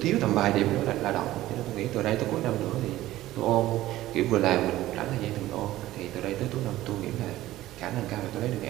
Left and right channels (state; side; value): quieter; left; 15.5 dB